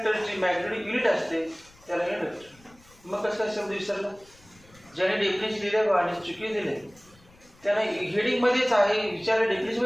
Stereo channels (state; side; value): noise; left; rumble, 28 dB below the sound